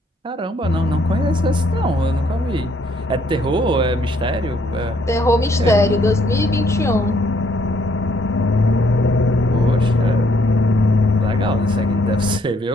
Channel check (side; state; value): both; normal; correlation 0.68